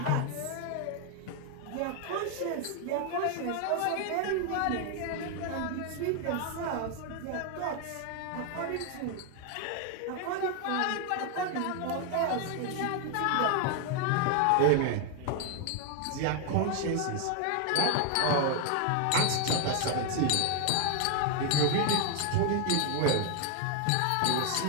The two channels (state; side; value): different; both; correlation 0.00